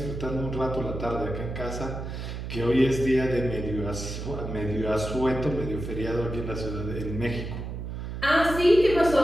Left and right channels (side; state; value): right; noise; hum, 6 dB below the sound